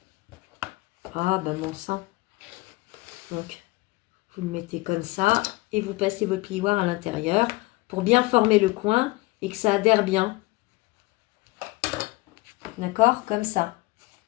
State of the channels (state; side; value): quieter; right; 21.7 dB